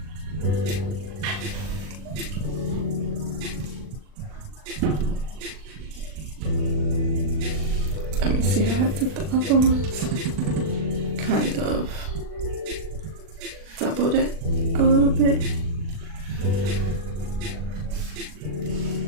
Let me see how I did the other ones. Kind of doubled it a little bit.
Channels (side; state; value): left; late; 40 ms